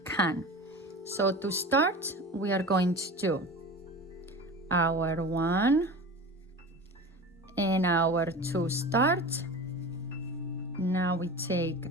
can. So to start, we are going to do our 1 and our 2 start. Now we take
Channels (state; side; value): normal; both; correlation 0.33